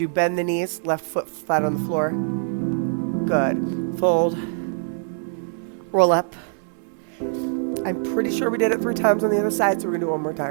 bend the knees. Left foot flat on the floor. Good. Fold. Roll up. I'm pretty sure we did it 3 times on the other side, so we're going to do it one more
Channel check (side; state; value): left; silent; digital silence